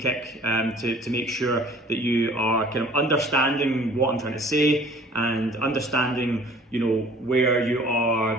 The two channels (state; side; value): normal; both; correlation 0.51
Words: to make sure that you are kind of understanding what I'm trying to say, and understanding, you know, where you